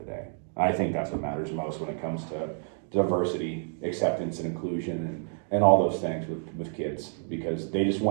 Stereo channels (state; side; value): silent; left; 57 dB below the other